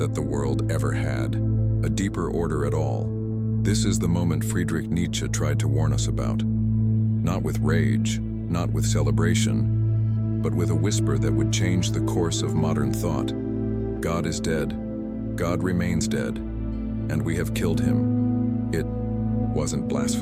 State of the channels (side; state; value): both; identical; correlation 1.00